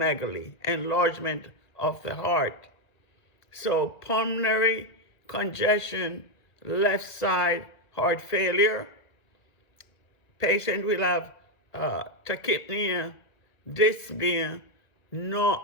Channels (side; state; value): right; late; 2.0 ms